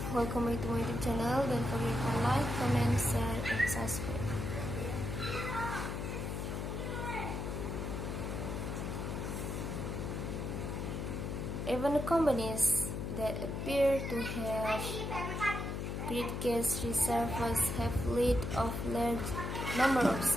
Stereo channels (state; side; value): noise; left; hum, 3 dB below the sound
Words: welcome back to my YouTube channel. Don't forget to like, comment, share, and subscribe. Even companies that appear to have great cash reserves have lead of large number of